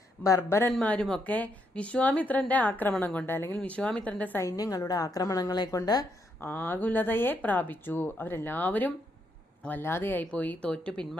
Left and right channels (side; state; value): both; normal; correlation 0.77